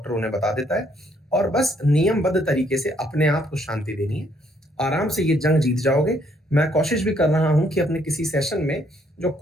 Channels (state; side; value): normal; both; correlation 0.69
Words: उन्हें बता देता है, और बस नियमबद्ध तरीके से अपने आप को शांति देनी है। आराम से ये जंग जीत जाओगे। मैं कोशिश भी कर रहा हूं कि अपने किसी सेशन में जो